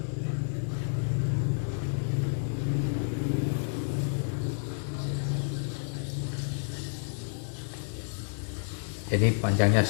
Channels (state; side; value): silent; right; digital silence